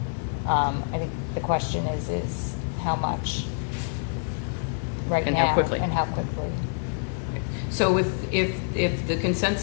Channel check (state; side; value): silent; right; 60 dB below the other